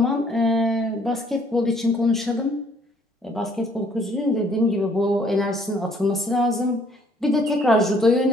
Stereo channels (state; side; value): normal; both; correlation 0.62